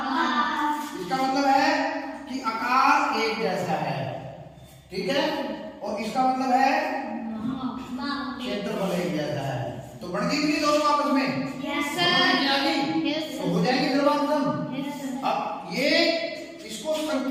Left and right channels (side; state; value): both; identical; correlation 1.00